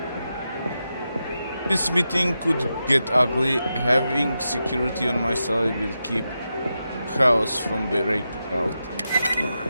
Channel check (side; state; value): both; inverted; correlation -0.89